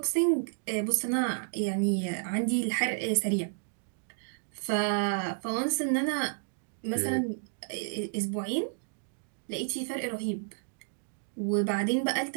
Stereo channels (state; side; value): silent; left; digital silence